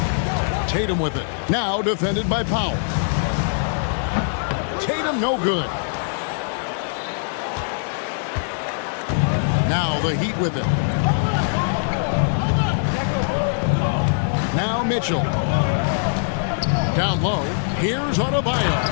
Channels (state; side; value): silent; right; digital silence